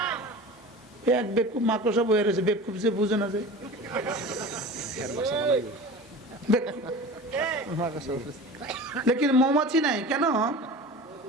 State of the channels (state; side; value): normal; both; correlation 0.35